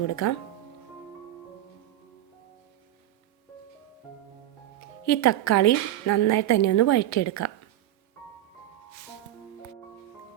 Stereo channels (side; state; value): left; quieter; 13.5 dB